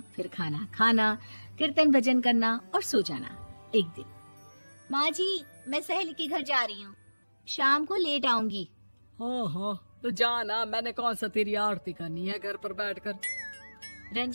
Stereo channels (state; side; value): inverted; both; correlation -1.00